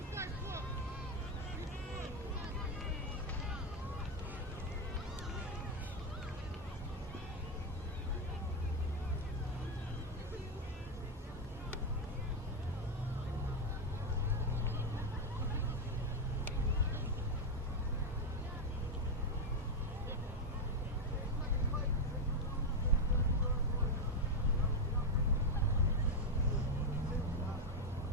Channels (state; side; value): normal; both; correlation 0.05